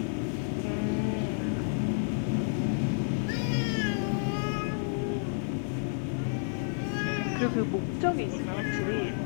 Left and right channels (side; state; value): right; silent; 58 dB below the other